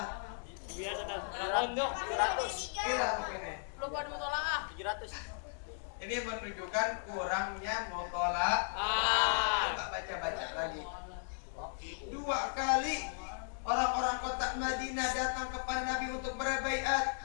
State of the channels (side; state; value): right; silent; digital silence